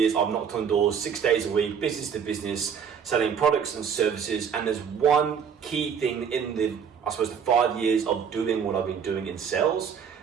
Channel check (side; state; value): left; quieter; 7.2 dB